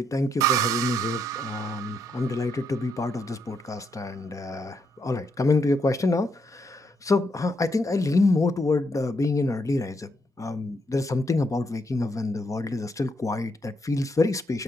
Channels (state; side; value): normal; both; correlation 0.76